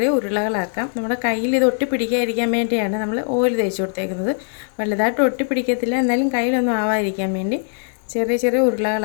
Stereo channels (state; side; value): silent; right; digital silence